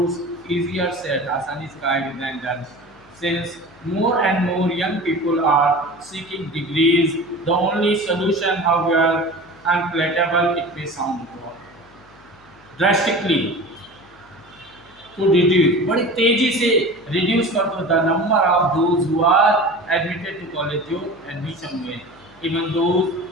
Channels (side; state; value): left; noise; hum, 29 dB below the sound